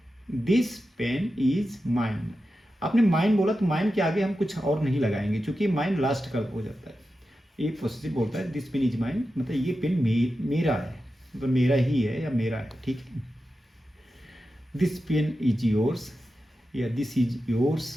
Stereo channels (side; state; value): both; normal; correlation 0.91